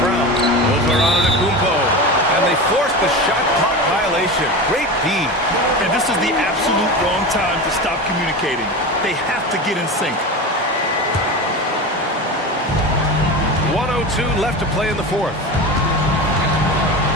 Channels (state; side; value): normal; both; correlation 0.26